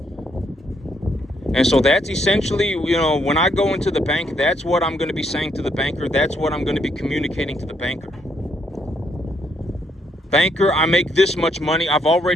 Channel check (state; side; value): normal; both; correlation 0.74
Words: And so that's essentially, when I go into the bank, that's what I'm going to be saying to the banker. That's what I'm going to be communicating to the banker. Banker, I make this much money. I've